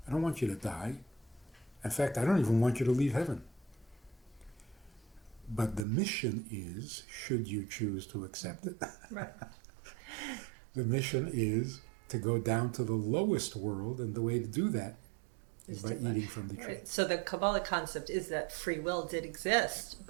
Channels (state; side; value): drops out; left; at 5.9 s